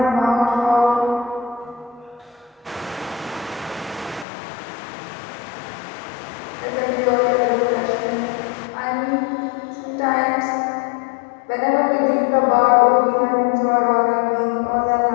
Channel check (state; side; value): drops out; right; at 4.2 s